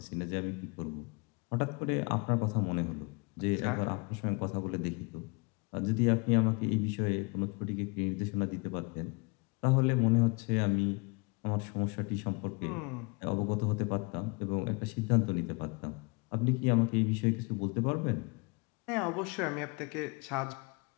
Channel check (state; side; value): quieter; right; 30.1 dB